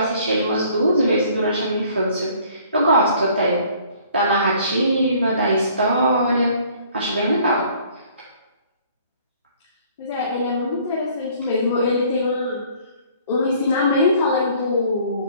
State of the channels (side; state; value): both; inverted; correlation -0.56